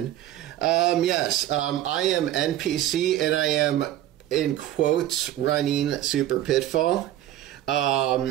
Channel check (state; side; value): quieter; left; 13.1 dB